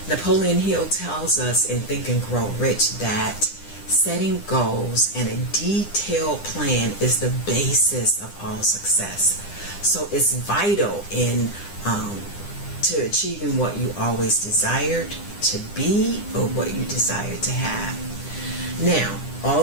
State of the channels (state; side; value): late; right; 9.9 ms